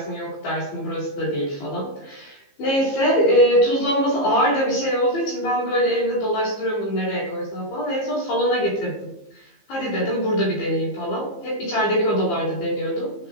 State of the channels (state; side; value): late; right; 15 ms